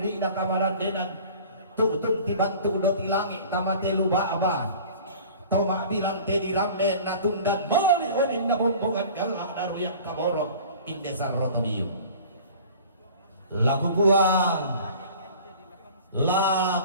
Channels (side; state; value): both; inverted; correlation -0.44